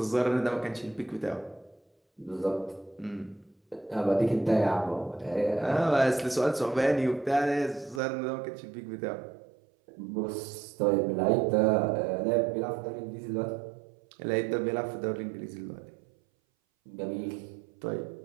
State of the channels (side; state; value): left; drops out; at 8.0 s